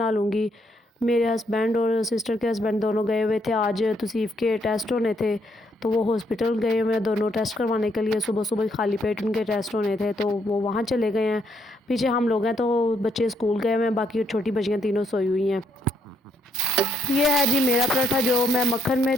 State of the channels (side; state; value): both; normal; correlation 0.73